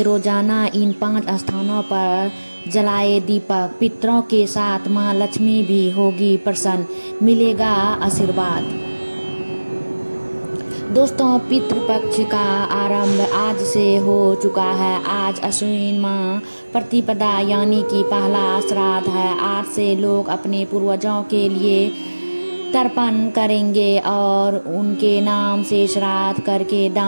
रोजाना इन 5 स्थानों पर जलाए दीपक। पितरों के साथ माँ लक्ष्मी भी होगी प्रसन्न, मिलेगा आशीर्वाद। दोस्तों, पितृपक्ष का आरंभ आज से हो चुका है। आज अश्विन माह प्रतिपदा यानी कि पहला श्राद्ध है। आज से लोग अपने पूर्वजों के लिए तर्पण करेंगे और उनके नाम से श्राद्ध करके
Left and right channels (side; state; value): both; inverted; correlation -1.00